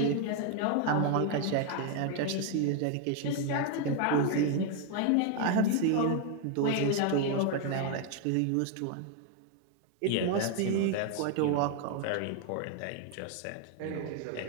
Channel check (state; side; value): different; both; correlation 0.01